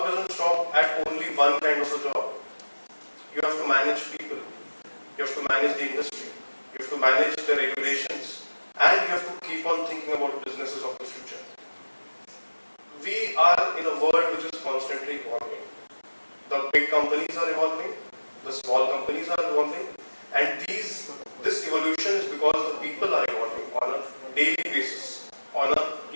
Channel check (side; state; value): both; inverted; correlation -1.00